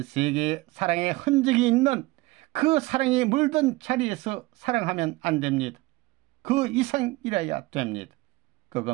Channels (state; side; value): quieter; left; 21.1 dB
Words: 세계의 사랑의 흔적이 있는 그 사랑이 물든 자리에서 사랑하면 안 됩니다. 그 이상이라야 됩니다.